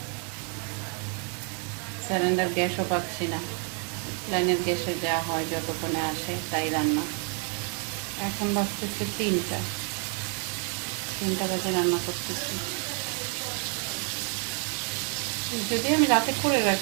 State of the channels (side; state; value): left; quieter; 39.6 dB